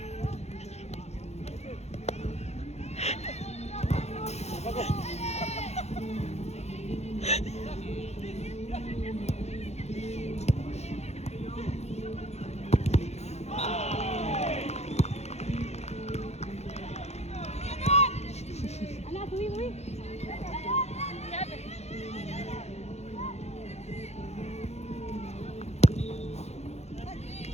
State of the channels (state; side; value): late; right; 0.31 ms